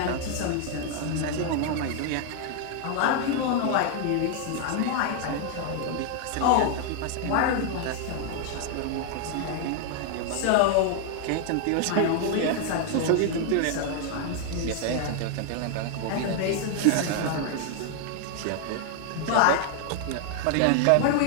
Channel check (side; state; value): both; different; correlation 0.00